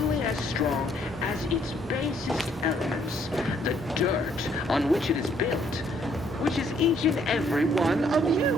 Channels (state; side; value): normal; both; correlation 0.67